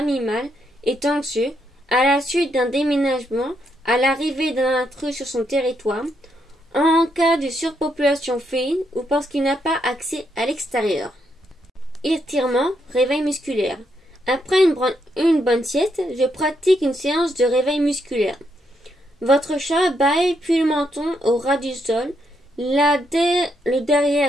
est anxieux à la suite d'un déménagement, à l'arrivée d'un intrus sur son territoire, en cas de surpopulation féline ou parce qu'il n'a pas accès à l'extérieur. Étirement, réveil musculaire. Après une bonne sieste, je pratique une séance de réveil musculaire. Votre chat bâille puis le menton au ras du sol, le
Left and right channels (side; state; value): both; normal; correlation 0.78